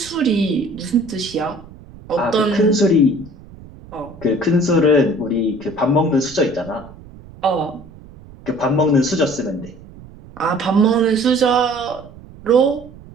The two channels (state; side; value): noise; right; rumble, 20 dB below the sound